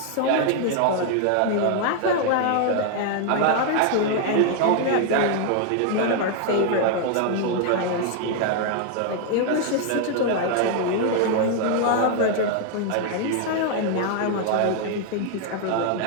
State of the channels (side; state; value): both; different; correlation 0.00